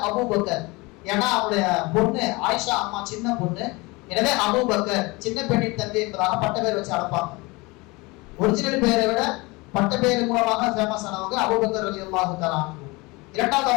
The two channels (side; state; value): right; quieter; 24.5 dB